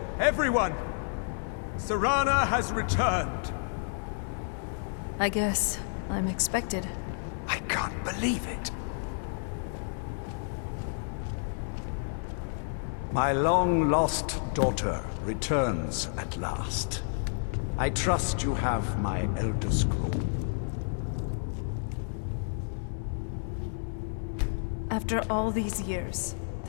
everyone! Serana has returned! I guess I'm expected. I can't believe it. My long-lost daughter returns at last. I trust you have my Elder Scroll. After all these years,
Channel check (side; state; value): right; silent; 58 dB below the other